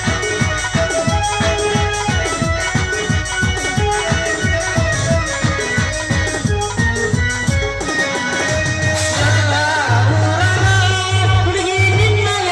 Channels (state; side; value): identical; both; correlation 1.00